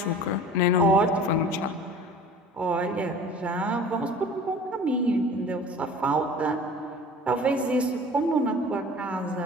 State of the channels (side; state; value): both; normal; correlation 0.43